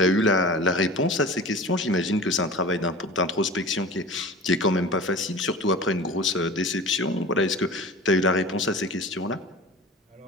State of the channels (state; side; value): normal; both; correlation 0.36